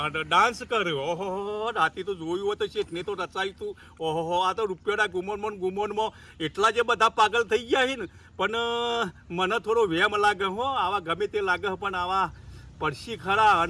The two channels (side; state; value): both; identical; correlation 1.00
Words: ડાન્સ કર્યો ઓહો રાતે તો જોયું હોય તો શેઠને તો રચાયું તું ઓહો આ તો રૂપિયાના ગુમોનમાં એટલા જે બધા પાગલ થઈ ગયા છે ને પણ મને થોડો વહેમ લાગે હો આવા ગમે તે લાગે પણ આવા પડશી ખરા